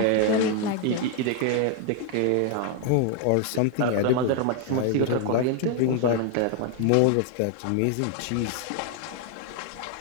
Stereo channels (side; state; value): both; different; correlation 0.00